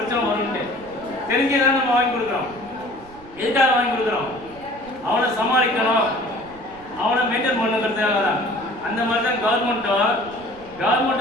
வரும்ட்டு தெரிஞ்சுதான் நம்ம வாங்கி கொடுக்குறோம். எதுக்காக வாங்கி கொடுக்குறோம்? அவனை சமாளிக்கணும், அவனை மெயின்டைன் பண்ணுங்கிறதுக்காக தான். அந்த மாதிரி தான்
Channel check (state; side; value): noise; right; rumble, 22 dB below the sound